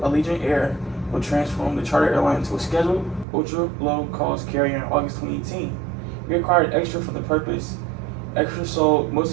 Allegiant Air, would transform the charter airline into a scheduled, ultra-low-cost carrier in August 2018. He acquired Extra for the purpose. Extra sold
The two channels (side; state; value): left; drops out; at 3.2 s